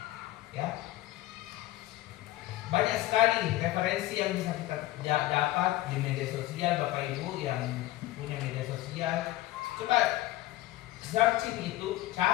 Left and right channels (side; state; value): right; quieter; 16.2 dB